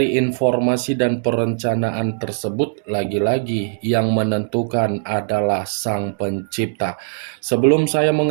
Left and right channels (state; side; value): silent; left; digital silence